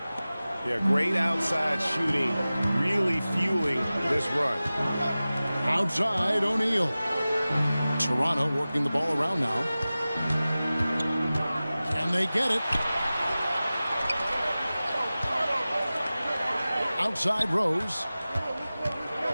Yeah, great outside shooting, really fueling this run. Outside, O'Neal. Toronto working the ball around now. Can they get it? Outside, Rose.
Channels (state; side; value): inverted; both; correlation -0.97